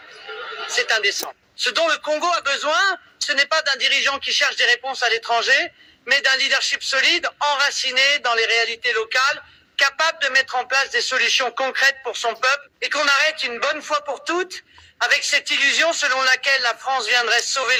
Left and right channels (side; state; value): both; identical; correlation 1.00